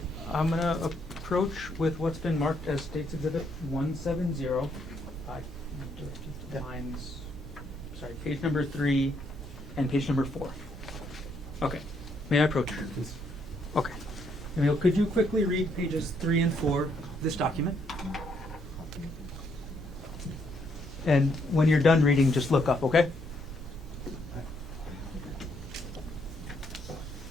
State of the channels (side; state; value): both; normal; correlation 0.73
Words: I'm going to approach with what's been marked as State's Exhibit 170. I direct you to lines, page number 3 and page number 4. Okay, may I approach? Yes. Okay. Emile, could you quickly read pages 3 and 4 of this document? And when you're done reading, just look up, okay?